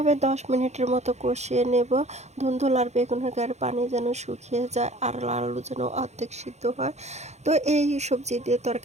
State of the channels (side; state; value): left; late; 0.33 ms